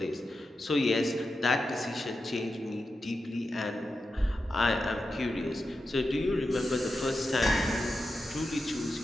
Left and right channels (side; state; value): both; normal; correlation 0.90